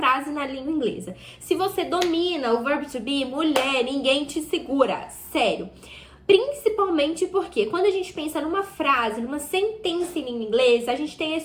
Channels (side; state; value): both; identical; correlation 1.00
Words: na língua inglesa. Se você domina o verbo to be, mulher, ninguém te segura. Sério. Principalmente porque quando a gente pensa numa frase, numa sentença em língua inglesa, a gente tem a